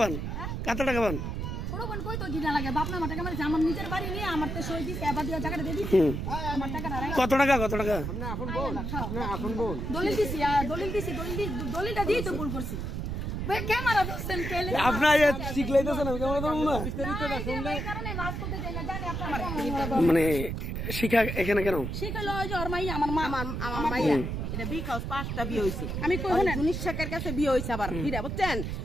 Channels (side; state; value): right; noise; rumble, 3 dB below the sound